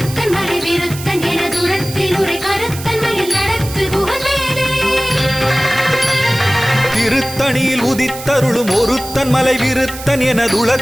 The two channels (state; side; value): noise; right; hiss, 12 dB below the sound